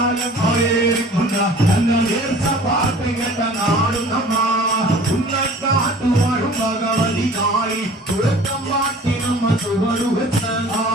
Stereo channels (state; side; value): normal; both; correlation 0.46